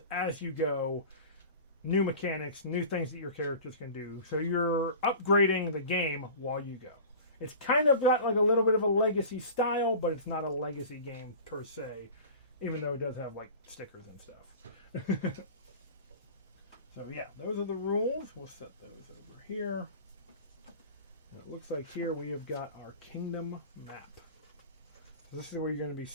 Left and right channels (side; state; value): both; inverted; correlation -0.37